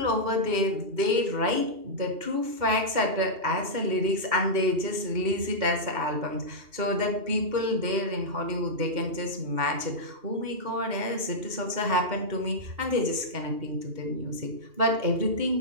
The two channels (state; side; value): late; left; 2.8 ms